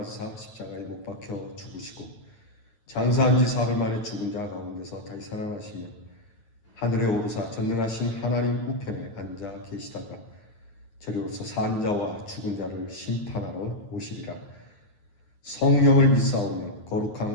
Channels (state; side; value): late; right; 9.7 ms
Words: 십자가에 못 박혀 죽으시고 장사한 지 사흘 만에 죽은 자 가운데서 다시 살아나시며 하늘에 오르사 전능하신 하나님 우편에 앉아 계시다가 저리로서 산 자와 죽은 자를 심판하러 오시리라. 성령을 믿사오며